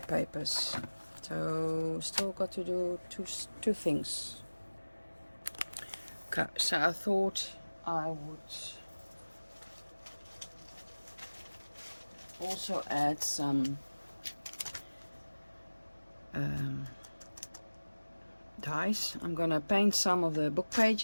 So still got to do two things. Okay, so I thought I would also add some dies. I'm gonna paint some of the book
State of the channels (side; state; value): both; inverted; correlation -1.00